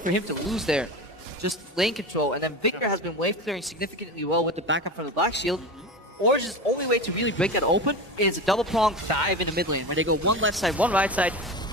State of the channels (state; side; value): normal; both; correlation 0.26